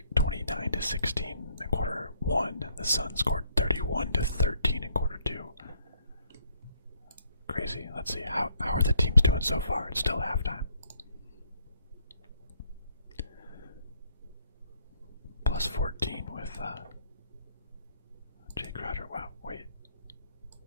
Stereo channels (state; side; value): inverted; both; correlation -0.68